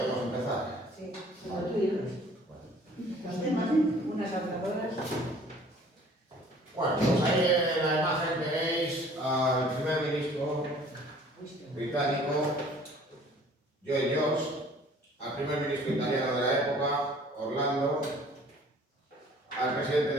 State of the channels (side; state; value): both; normal; correlation 0.52